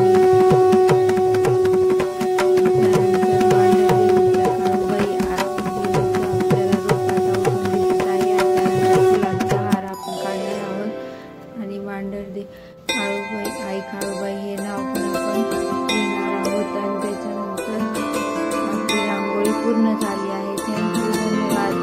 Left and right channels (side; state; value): both; identical; correlation 1.00